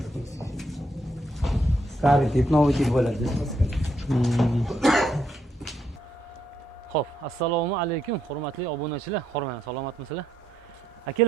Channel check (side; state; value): both; normal; correlation 0.75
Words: Старый tip, новый tip bo'ladi. Xo'p, assalomu alaykum, hurmatli obunachilar. Hormang, salomatmisizlar?